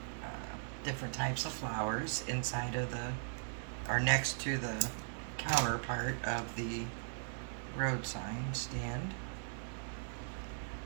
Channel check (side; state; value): left; silent; digital silence